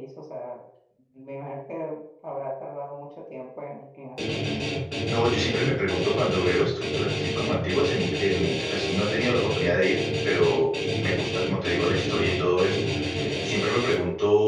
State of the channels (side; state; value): both; identical; correlation 1.00